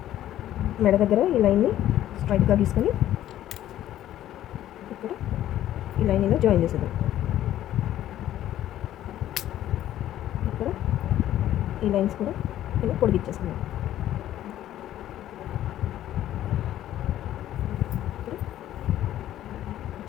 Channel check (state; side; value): quieter; right; 12.6 dB